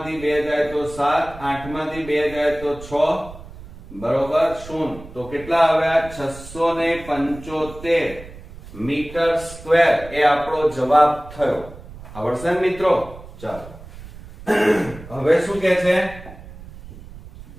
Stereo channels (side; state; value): right; noise; rumble, 16 dB below the sound